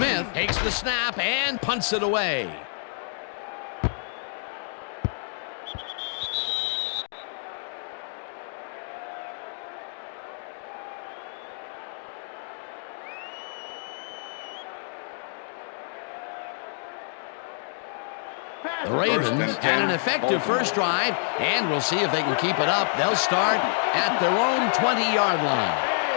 takes the snap and punts it away. The Ravens had an effective first drive, and we'll see if they can keep it up. They'll start at their own 20-yard line.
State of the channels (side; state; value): right; silent; digital silence